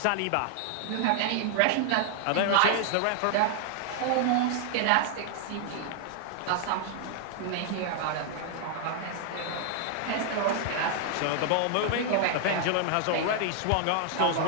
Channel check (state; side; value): different; both; correlation 0.00